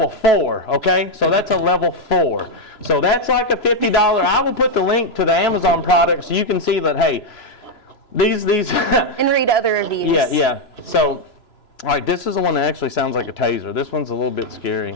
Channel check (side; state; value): right; late; 3.0 ms